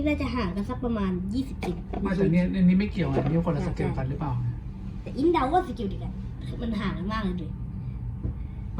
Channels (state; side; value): identical; both; correlation 1.00